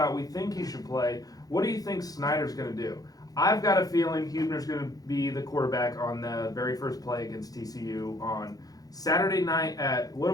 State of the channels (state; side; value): late; right; 0.18 ms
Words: we think he should play. What do you think Snyder's going to do? I've got a feeling Huebner's going to be the quarterback on the very first play against TCU on Saturday night at, what